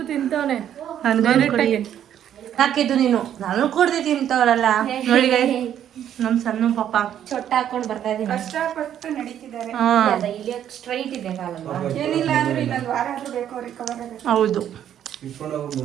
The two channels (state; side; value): quieter; left; 10.2 dB